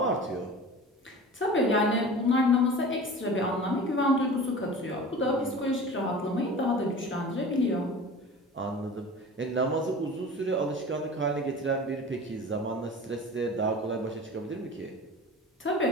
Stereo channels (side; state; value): both; normal; correlation 0.37